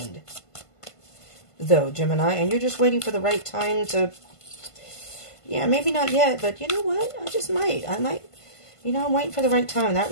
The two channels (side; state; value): right; late; 1.5 ms